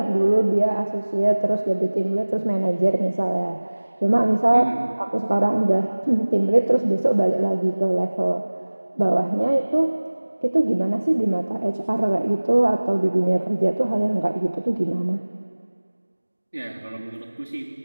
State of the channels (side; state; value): both; inverted; correlation -1.00